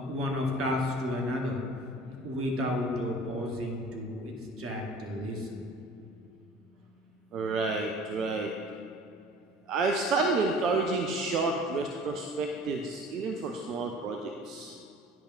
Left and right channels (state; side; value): normal; both; correlation 0.46